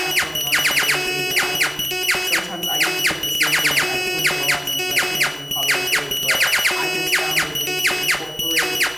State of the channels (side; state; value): both; identical; correlation 1.00